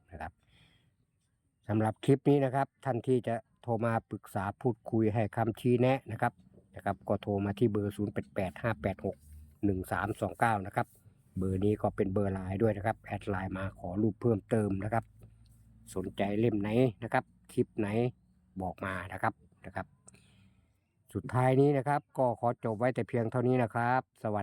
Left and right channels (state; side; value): identical; both; correlation 1.00